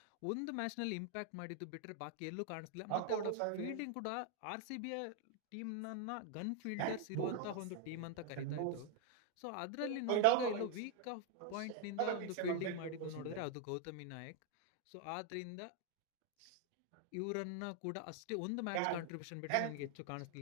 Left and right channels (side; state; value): both; different; correlation 0.00